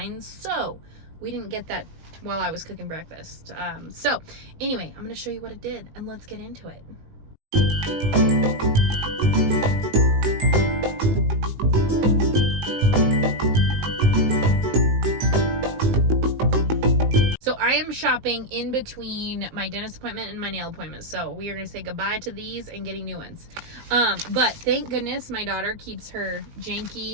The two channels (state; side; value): late; left; 19 ms